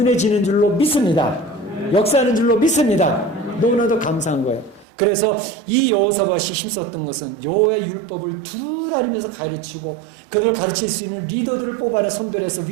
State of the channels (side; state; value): left; drops out; at 4.9 s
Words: 줄로 믿습니다. 역사하는 줄로 믿습니다. 너무나도 감사한 거예요. 그래서 이 여호사밧이 힘썼던 것은 여호와의 율법을 둘 알리면서 가르치고 그들을 가르칠 수 있는 리더들을 뽑아내 선별해서